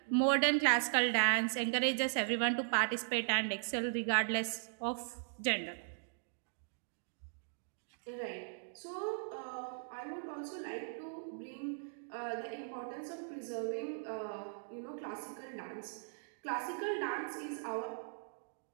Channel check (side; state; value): left; silent; digital silence